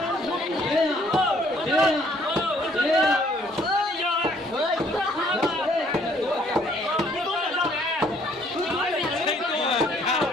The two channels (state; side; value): normal; both; correlation 0.63